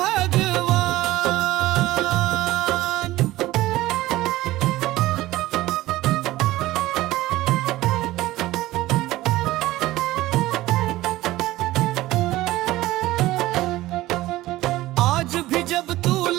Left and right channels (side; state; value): left; quieter; 17.0 dB